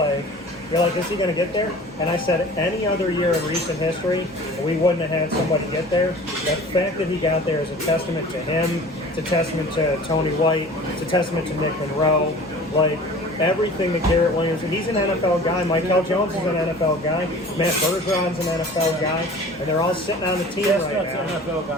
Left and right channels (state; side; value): normal; both; correlation 0.43